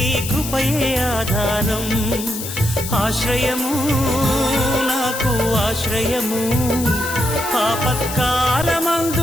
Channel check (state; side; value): noise; left; hiss, 8 dB below the sound